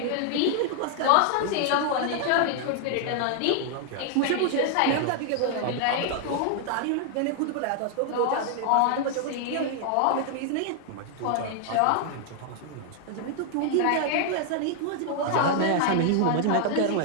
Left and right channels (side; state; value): both; different; correlation 0.00